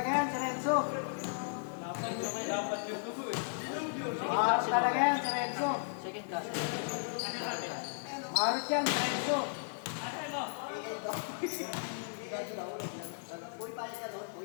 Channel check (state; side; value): silent; right; digital silence